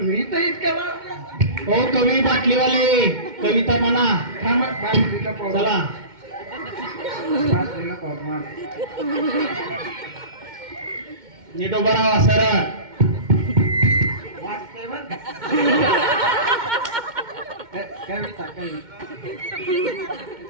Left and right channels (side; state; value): left; late; 2.1 ms